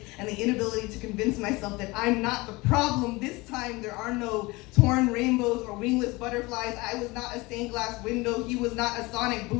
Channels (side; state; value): right; quieter; 22.9 dB